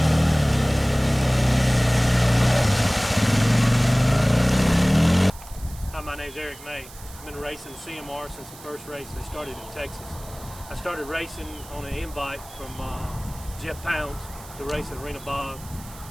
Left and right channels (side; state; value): right; noise; hiss, 19 dB below the sound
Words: Hi, my name's Eric May. I've been racing CMR since the first race they started in Texas. I started racing on an invite from Jeff Pounds to race at Arena Bog